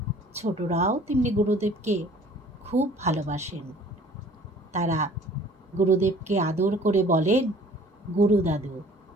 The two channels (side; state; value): both; normal; correlation 0.52